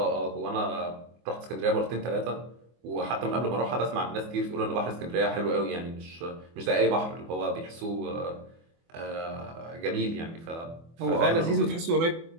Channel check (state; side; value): late; left; 24 ms